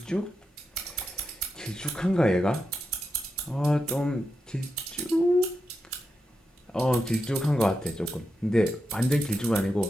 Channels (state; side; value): normal; both; correlation 0.87